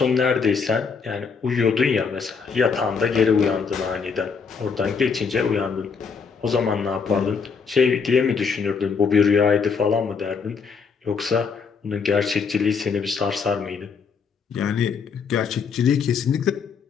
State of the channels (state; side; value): quieter; right; 5.6 dB